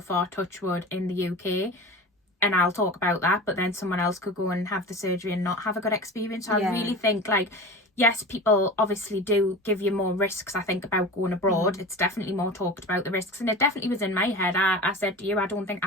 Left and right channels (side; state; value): both; normal; correlation 0.33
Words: far, touch wood, in the UK, and I'll talk about that, but then someone else could go and have the surgery and not have a good experience. So I really think, like, yes, people obviously do give you more risks, I think, about going abroad. It's definitely more talked about, the risks, and it definitely was in my head. I said to you, I don't think